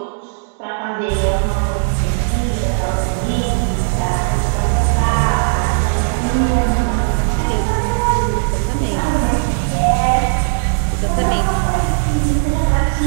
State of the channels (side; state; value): left; silent; digital silence